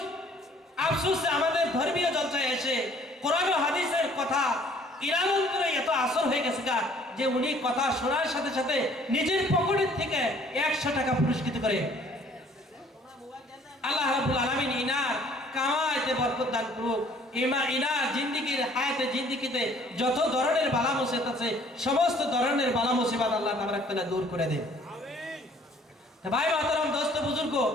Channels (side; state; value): both; normal; correlation 0.57